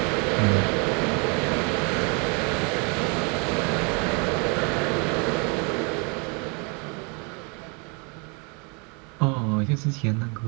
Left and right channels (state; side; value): quieter; left; 32.7 dB